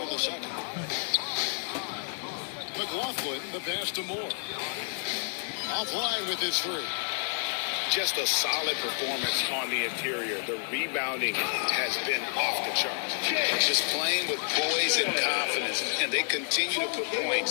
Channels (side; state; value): right; silent; digital silence